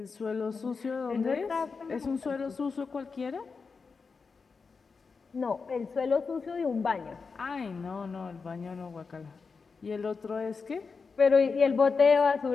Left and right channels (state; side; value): quieter; right; 4.9 dB